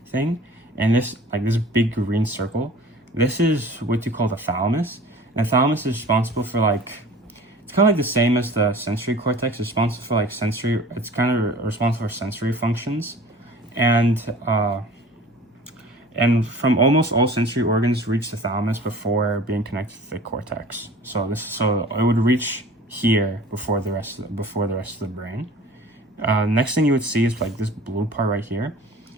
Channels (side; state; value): both; normal; correlation 0.44